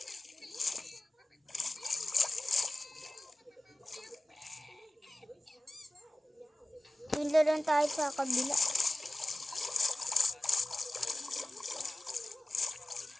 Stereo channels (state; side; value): normal; both; correlation 0.96